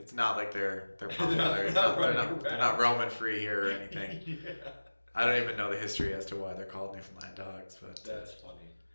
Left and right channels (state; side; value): inverted; both; correlation -1.00